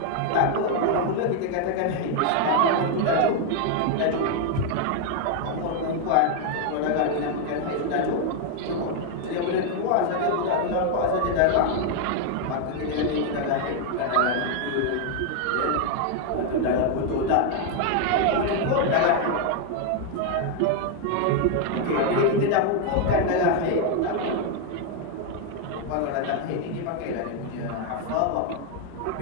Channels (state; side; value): different; both; correlation 0.01